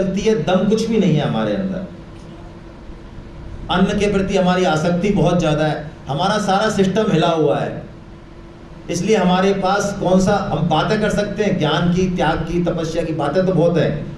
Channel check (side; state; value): both; identical; correlation 1.00